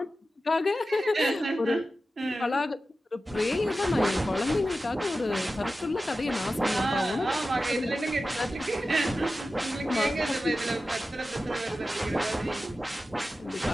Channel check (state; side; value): normal; both; correlation 0.93